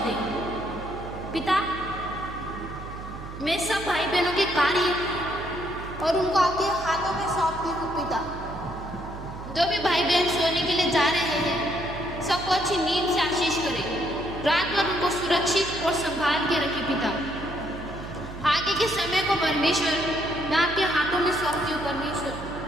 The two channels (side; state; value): right; noise; hum, 11 dB below the sound